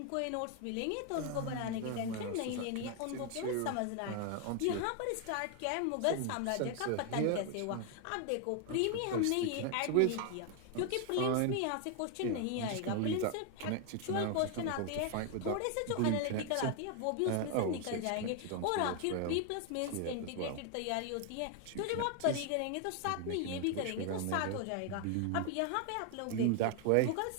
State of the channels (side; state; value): both; different; correlation 0.00